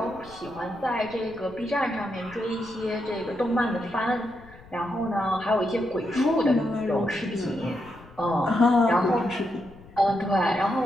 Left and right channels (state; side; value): noise; left; rumble, 22 dB below the sound